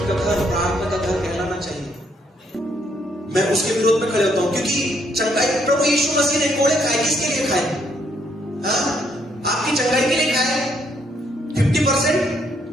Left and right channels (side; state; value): both; normal; correlation 0.71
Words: का घर प्रार्थना का घर कहलाना चाहिए। मैं उसके विरोध में खड़े होता हूं, क्योंकि चंगाई प्रभु यीशु मसीह ने कोड़े खाए, किसके लिए खाए? आपकी चंगाई के लिए खाए। 50%